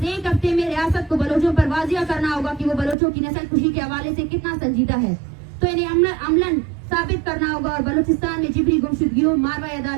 ایک ہفتے میں ریاست کو بلوچوں پر واضح کرنا ہوگا کہ وہ بلوچوں کی نسل کشی کے حوالے سے کتنا سنجیدہ ہے، تو انہیں عملاً ثابت کرنا ہوگا اور بلوچستان میں جبری گمشدگیوں، ماروی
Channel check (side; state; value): left; drops out; at 3.0 s